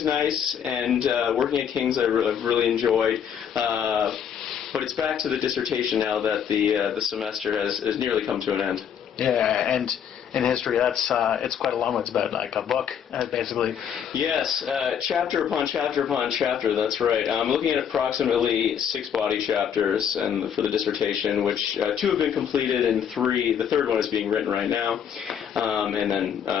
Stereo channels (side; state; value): right; quieter; 8.3 dB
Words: nice, and working at King's I've really enjoyed. But it's back to the dissertation now that the semester has nearly come to an end. Yeah, and in history, it's quite a long one. It's about like a book, basically. Yes, chapter upon chapter upon chapter. That's right. I'm looking at approximately 6 body chapters, and for the dissertation, which 2 have been completed, and the third one is being written right now. And then